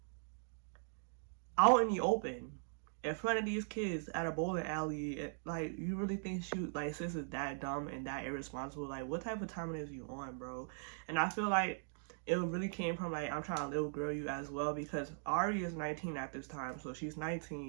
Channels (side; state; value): left; silent; digital silence